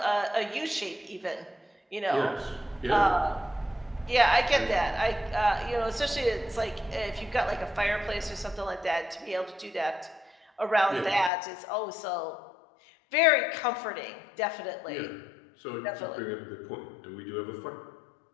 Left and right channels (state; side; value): drops out; right; at 11.3 s